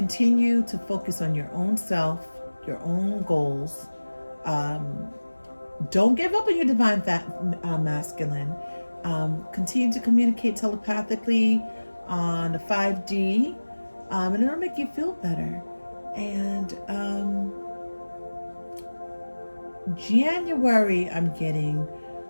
to focus on your own self, your own goals. Don't give up on your divine masculine. Continue to communicate telepathically on the 5D, and it'll make you feel better. And January, I'm getting,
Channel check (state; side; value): inverted; both; correlation -1.00